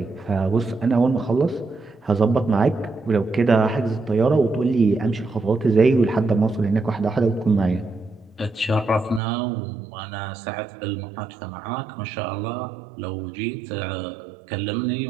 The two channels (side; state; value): left; drops out; at 9.2 s